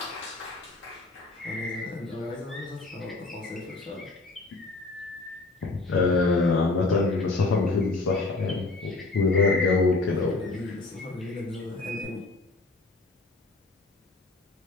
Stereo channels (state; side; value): quieter; right; 3.3 dB